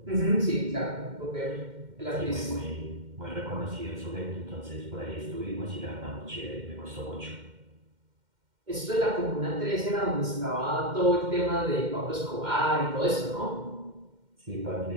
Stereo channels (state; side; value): late; left; 2.1 ms